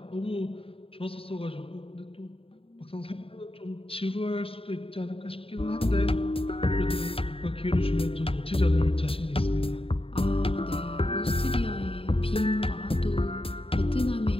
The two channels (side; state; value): right; late; 0.27 ms